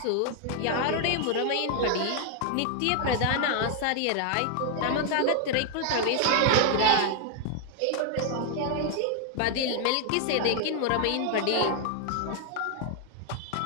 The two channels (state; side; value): different; both; correlation 0.00